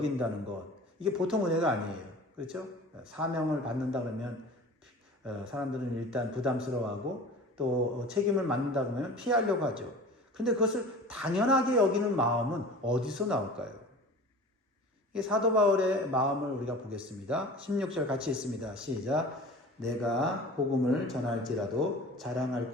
것. 이게 보통 은혜가 아니에요. 그렇죠? 사명을 받는다 그러면 사람들은 일단 부담스러워하고 또 책임을 맡는다 그러면 피하려고 하죠. 그런데 그것을 당연하게 여기는 마음은 어디서 나올까요? 이 사도 바울의 마음을 우리가 보겠습니다. 16절 같이 읽습니다. 시작. 내가 복음을 전할지라도 자랑할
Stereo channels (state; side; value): normal; both; correlation 0.39